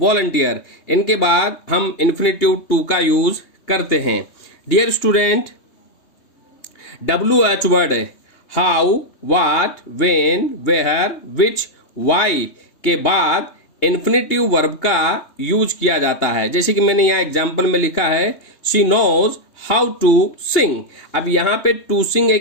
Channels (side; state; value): right; late; 2.8 ms